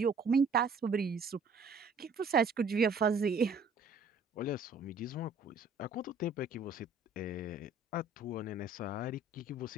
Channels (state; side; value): quieter; left; 3.5 dB